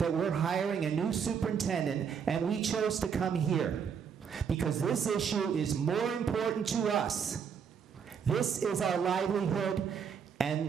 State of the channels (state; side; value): quieter; left; 7.0 dB